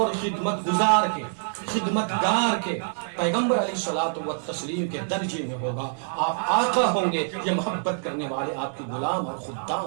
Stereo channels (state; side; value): silent; left; digital silence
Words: خدمت گزار کے، خدمت گار کے، پیغمبر علیہ الصلوۃ والتسلیم کے درجے میں ہوگا۔ آپ آقا ہوں گے، یہ محبت کرنے والے آپ کے غلام اور